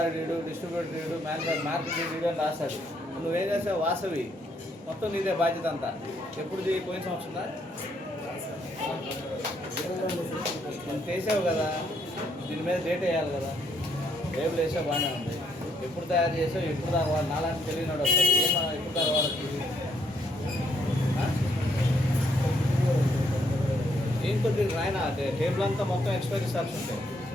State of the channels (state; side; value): normal; both; correlation 0.72